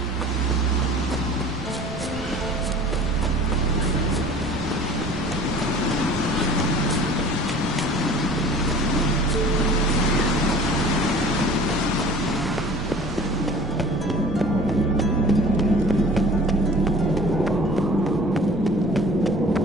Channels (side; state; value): right; noise; rumble, 12 dB below the sound